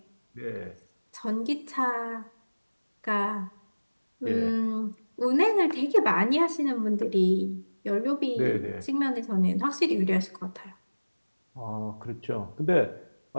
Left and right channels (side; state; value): both; inverted; correlation -1.00